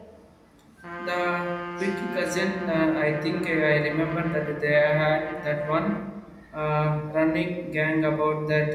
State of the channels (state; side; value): identical; both; correlation 1.00